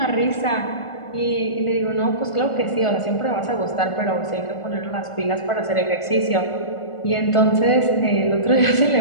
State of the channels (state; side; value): late; right; 1.4 ms